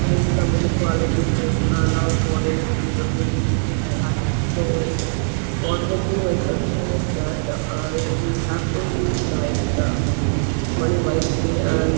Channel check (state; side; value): silent; left; digital silence